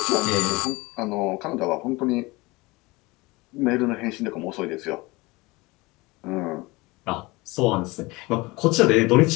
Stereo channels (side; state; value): right; quieter; 22.9 dB